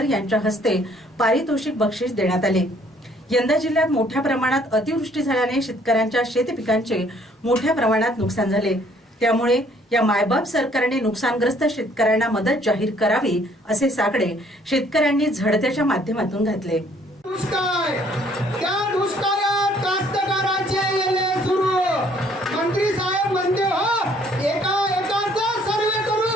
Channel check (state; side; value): normal; both; correlation 0.62